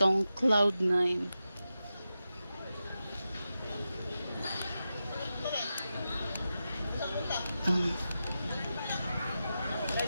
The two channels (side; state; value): both; inverted; correlation -0.91